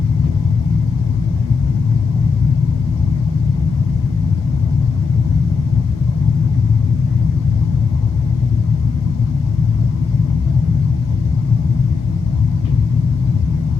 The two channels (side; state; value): right; quieter; 5.1 dB